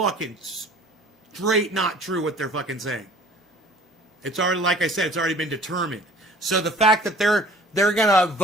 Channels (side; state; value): both; normal; correlation 0.51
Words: straight not true what they're fucking saying. It's already, like I said, it's already been determined. So the fact that they're going to